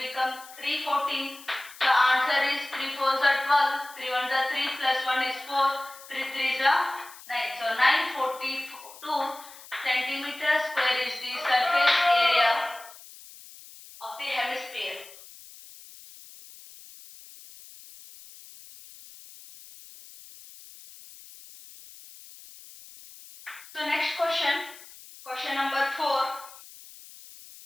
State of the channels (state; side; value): noise; left; hiss, 19 dB below the sound